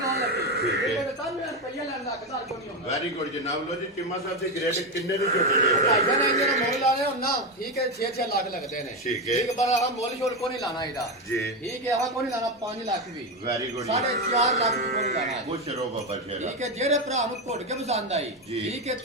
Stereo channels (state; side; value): normal; both; correlation 0.12